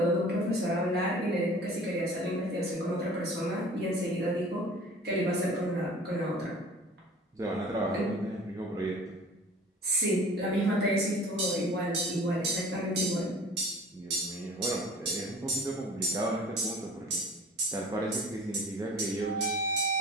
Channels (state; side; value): normal; both; correlation 0.45